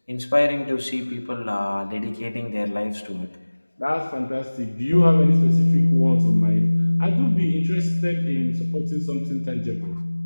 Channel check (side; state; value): both; inverted; correlation -1.00